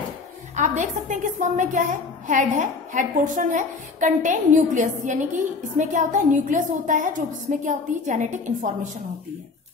आप देख सकते हैं कि स्पर्म में क्या है, हेड है, हेड पोर्शन है, कंटेन न्यूक्लियस, यानी कि इसमें क्या होता है, न्यूक्लियस होता है, जो इसमें क्या होती है, जेनेटिक इंफॉर्मेशन होती है।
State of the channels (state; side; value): quieter; right; 4.3 dB